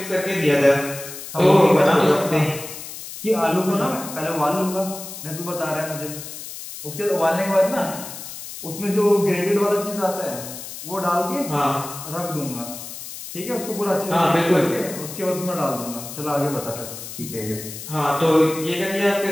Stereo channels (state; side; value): noise; left; hiss, 11 dB below the sound